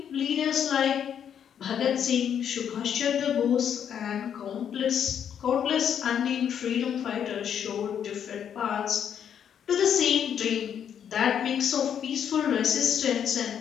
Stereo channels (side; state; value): right; quieter; 8.6 dB